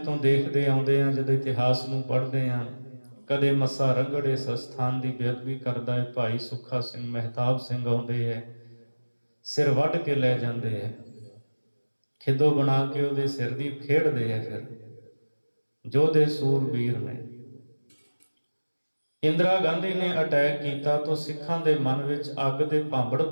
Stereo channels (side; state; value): both; inverted; correlation -1.00